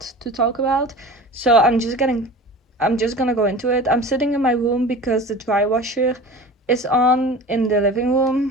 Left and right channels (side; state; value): both; normal; correlation 0.37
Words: So I'm just gonna go into it. I'm sitting in my room because the dry washer is on in the living